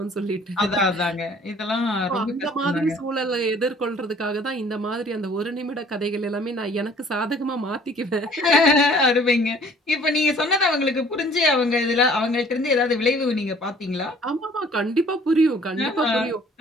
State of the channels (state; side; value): normal; both; correlation 0.54